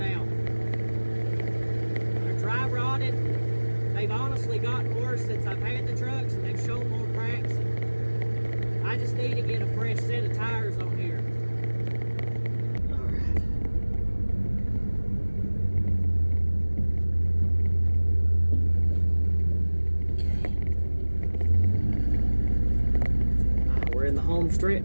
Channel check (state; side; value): inverted; both; correlation -1.00